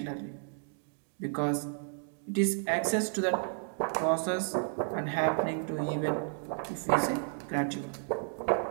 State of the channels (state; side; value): silent; left; 56 dB below the other